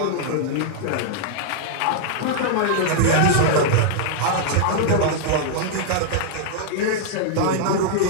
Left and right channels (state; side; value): different; both; correlation -0.01